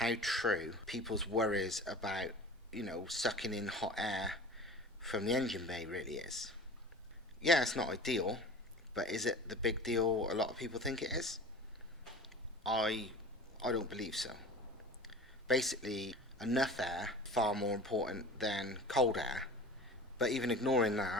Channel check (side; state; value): both; normal; correlation 0.38